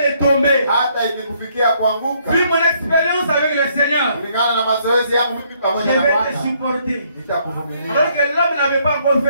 de tomber, hata ikikufikia kuanguka, vu mon expérience avec le Seigneur, kulingana na mazoezi yangu mimi je pamoja na vais te Bwana, supporter. nitakuvumilia. Alors que l'homme n'avait pas encore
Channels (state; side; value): inverted; both; correlation -0.68